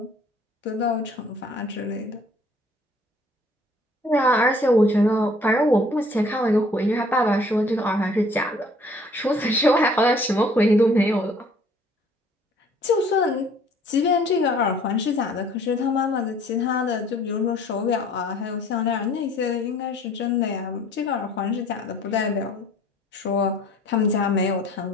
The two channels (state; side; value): normal; both; correlation 0.56